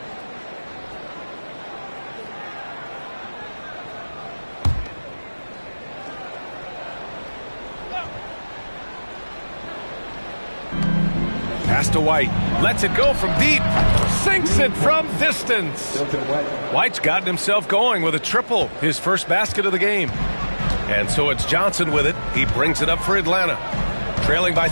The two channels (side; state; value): both; inverted; correlation -1.00